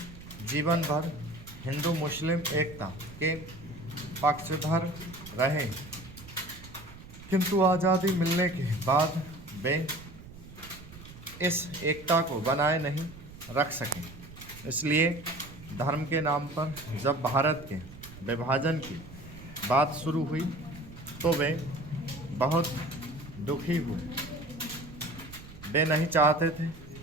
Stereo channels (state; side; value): noise; right; rumble, 17 dB below the sound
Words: जीवन भर हिंदू मुस्लिम एकता के पक्षधर रहे, किंतु आज़ादी मिलने के बाद वे इस एकता को बनाए नहीं रख सके। इसलिए धर्म के नाम पर जब भारत के विभाजन की बात शुरू हुई तो वे बहुत दुखी हुए। वे नहीं चाहते थे